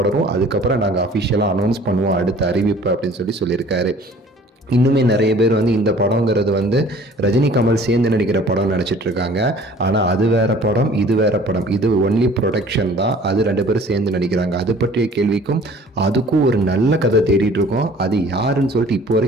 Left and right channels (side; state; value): both; normal; correlation 0.50